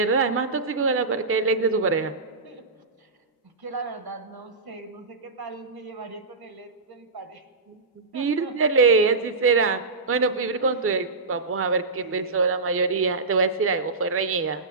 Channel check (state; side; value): quieter; left; 3.9 dB